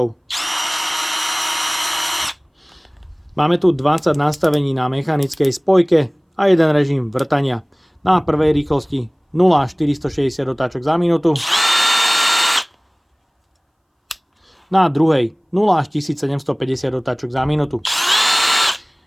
Máme tu 20 nastavení na mechanickej spojke a jeden režim vrtania. Na prvej rýchlosti 0 až 460 otáčok za minútu. Na druhej 0 až 1750 otáčok za minútu.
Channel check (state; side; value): identical; both; correlation 1.00